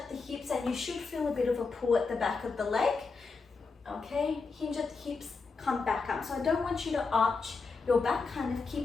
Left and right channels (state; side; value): quieter; right; 4.4 dB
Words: the hips, and you should feel a bit of a pull at the back of the leg. Okay, hinge at the hips, come back up. So I don't want you to arch your back, kind of